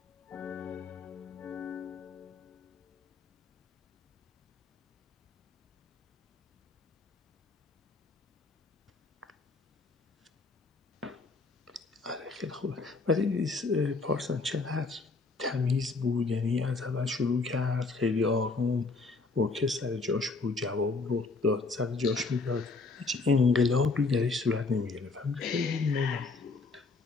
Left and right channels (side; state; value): right; quieter; 3.9 dB